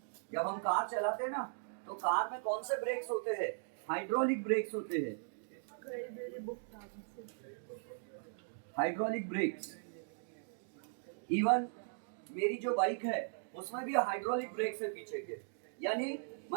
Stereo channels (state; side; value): silent; left; digital silence